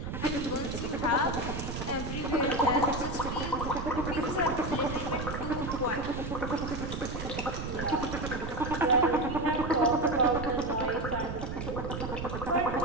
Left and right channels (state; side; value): noise; right; rumble, 6 dB below the sound